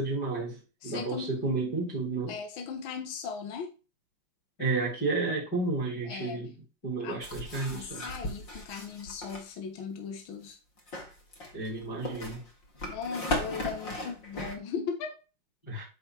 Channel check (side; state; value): right; late; 5.6 ms